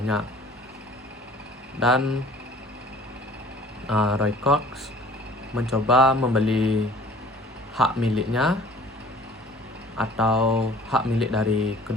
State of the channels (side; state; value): both; normal; correlation 0.50